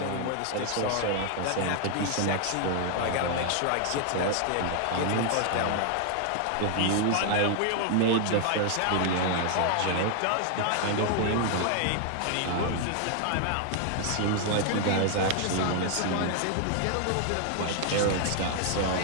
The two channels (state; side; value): different; both; correlation 0.00